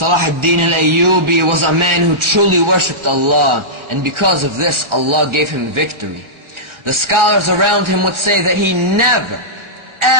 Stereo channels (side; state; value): left; late; 1.4 ms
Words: ad-Din al-Ayyubi was a man who truly worshipped Allah, and because of this, Allah gave him victory. The scholars around him would say that he never,